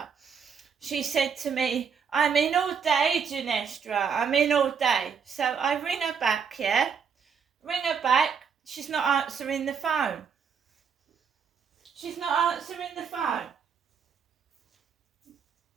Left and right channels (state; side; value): quieter; left; 6.6 dB